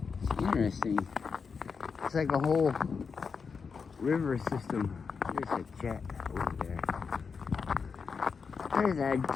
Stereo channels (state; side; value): quieter; right; 5.5 dB